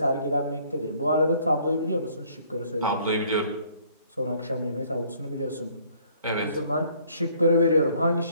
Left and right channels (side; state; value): both; inverted; correlation -0.61